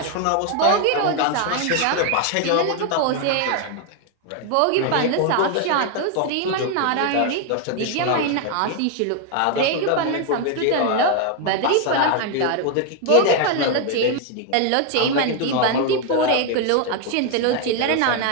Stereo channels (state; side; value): different; both; correlation 0.01